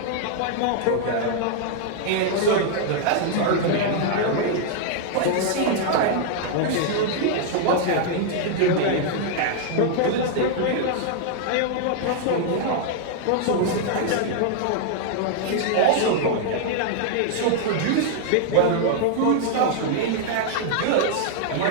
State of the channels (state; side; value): different; both; correlation -0.01